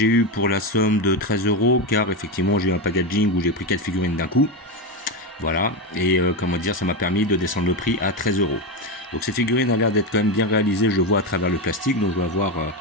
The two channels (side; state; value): both; normal; correlation 0.13